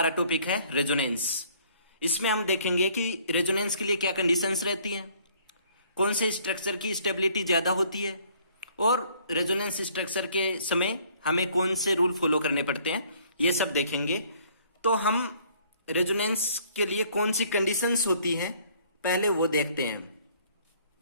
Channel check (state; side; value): inverted; both; correlation -0.60